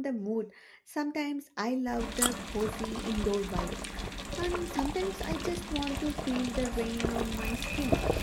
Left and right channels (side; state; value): both; identical; correlation 1.00